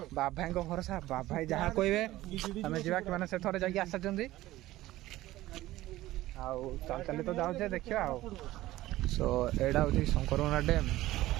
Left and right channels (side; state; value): left; quieter; 16.3 dB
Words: ବାବାଙ୍କ ଭରସା, ବାବାଇ ଯାହା କହିବେ ଆମେ ଯିବା। କି ମାନେ ସେ ଥରେ ଯାଇକି ଆସିଛନ୍ତି, ଆଉ ଚାଲି ଚାଲି ତ ଯାଉଛେ, ଦେଖିବା ଆଉ। ସୋ ଏଇଟା ହେଉଛି ଶଙ୍କରମରା ଡ୍ୟାମ୍।